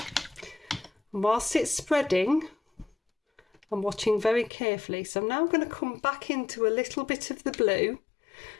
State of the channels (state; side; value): drops out; right; at 4.5 s